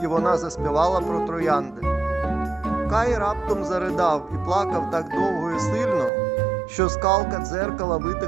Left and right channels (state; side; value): drops out; left; at 6.1 s